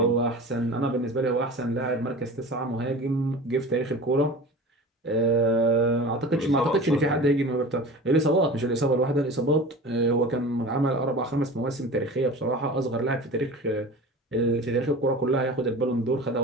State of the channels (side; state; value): both; normal; correlation 0.36